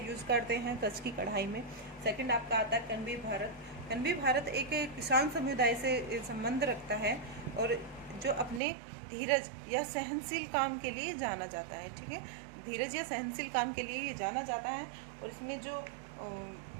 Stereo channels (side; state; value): left; drops out; at 8.6 s